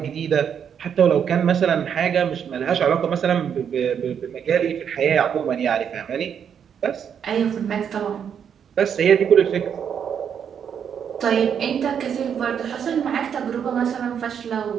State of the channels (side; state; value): left; quieter; 7.9 dB